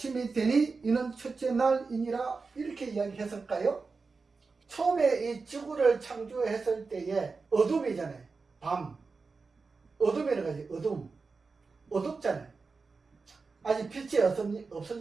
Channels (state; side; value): quieter; left; 4.4 dB